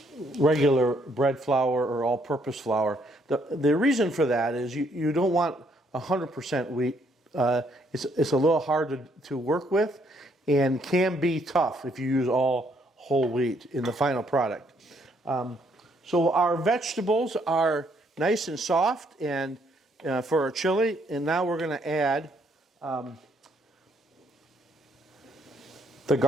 regular bread flour or all-purpose flour. The reason for that is you don't want 100% wheat. It's a little hard to work with and can be tough if you use all whole wheat in the final product. So our vegetables are nice and soft and for our chili, and now we're going to add the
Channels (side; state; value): both; normal; correlation 0.70